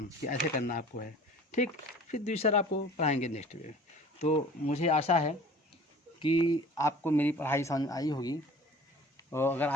कि ऐसे करना आपको है, ठीक। फिर दूसरा आपको पढ़ाएंगे नेक्स्ट में। तो मुझे आशा है कि आपको मेरी पढ़ाई समझ आई होगी, और अगर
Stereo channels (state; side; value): normal; both; correlation 0.45